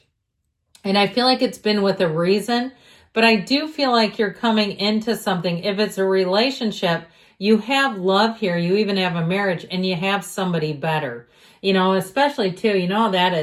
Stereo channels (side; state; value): both; identical; correlation 1.00